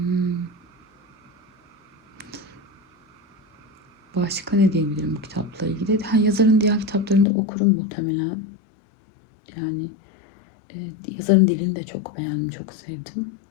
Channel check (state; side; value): drops out; right; at 7.2 s